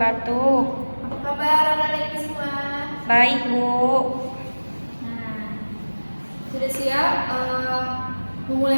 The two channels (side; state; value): both; inverted; correlation -1.00